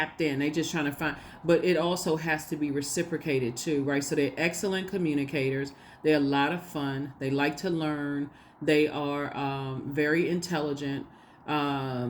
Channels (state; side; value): identical; both; correlation 1.00